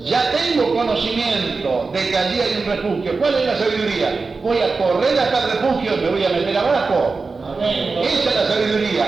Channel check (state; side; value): quieter; left; 4.2 dB